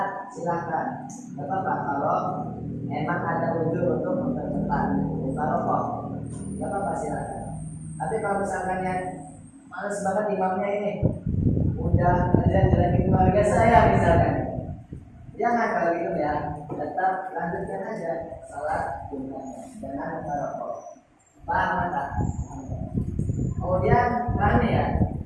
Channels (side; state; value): both; identical; correlation 1.00